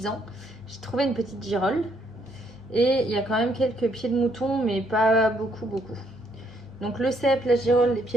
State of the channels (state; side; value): normal; both; correlation 0.71